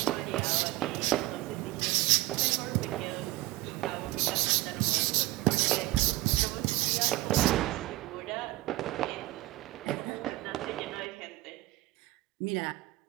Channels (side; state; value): left; quieter; 18.5 dB